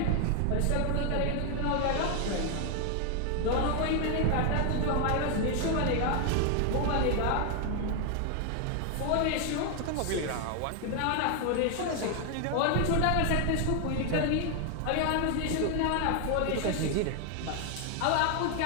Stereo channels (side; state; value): both; different; correlation 0.00